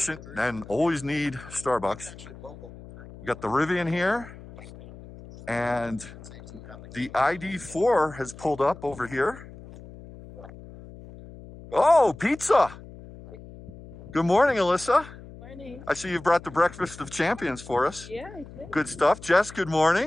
and always need Starbucks. We got the Rivian here, and the ID4 has pulled up over here. Oh, pizza! Good morning, Alyssa. Good morning. I see you've brought the breakfast of champions for us. Yeah, I did. Good stuff. Jess, good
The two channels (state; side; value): noise; left; hum, 17 dB below the sound